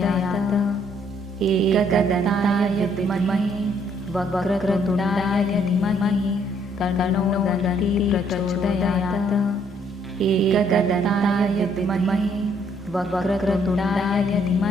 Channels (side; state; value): both; normal; correlation 0.66